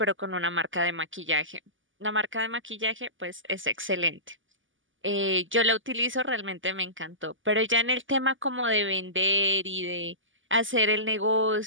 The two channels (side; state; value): left; late; 0.57 ms